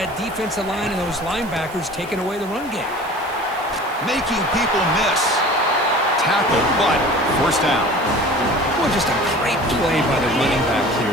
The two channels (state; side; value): noise; right; hiss, 22 dB below the sound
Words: that defensive line and those linebackers taking away the run game. Making people miss. Tackle, but first down. Well, just a great play by the running back here.